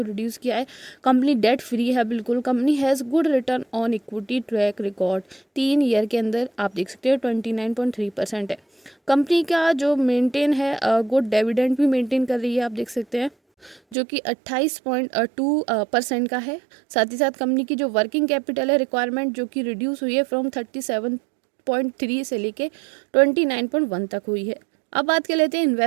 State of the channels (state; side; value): drops out; left; at 14.0 s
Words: रिड्यूस किया है, कंपनी डेट फ्री है बिल्कुल। Company has good return on equity track record 3 year के अंदर आप देख सकते हैं 29.3% है। कंपनी का जो मेंटेन है गुड डिविडेंड भी मेंटेन कर रही है, आप देख सकते हैं, जो कि 28.2% का है। साथ ही साथ कंपनी की जो वर्किंग कैपिटल है रिक्वायरमेंट, जो कि रिड्यूस हुई है फ्रॉम 37.3 से लेके 29.1 तक हुई है। अब बात कर लेते हैं